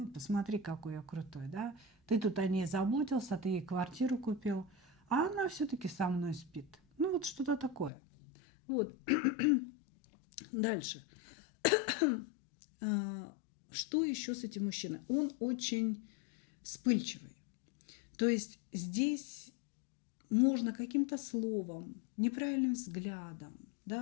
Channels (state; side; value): drops out; right; at 7.9 s